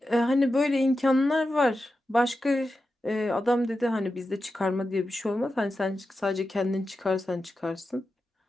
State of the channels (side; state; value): both; normal; correlation 0.91